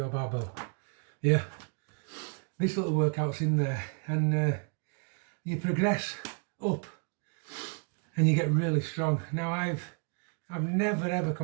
barbell. Yeah. This little workout's in there, and you progress up and you get really strong. Now I've never ever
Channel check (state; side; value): quieter; left; 39.5 dB